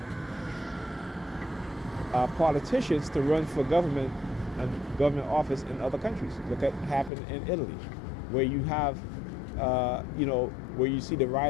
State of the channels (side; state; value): right; drops out; at 7.1 s